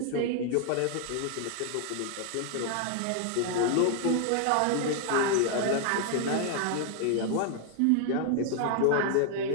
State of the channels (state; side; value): different; both; correlation 0.00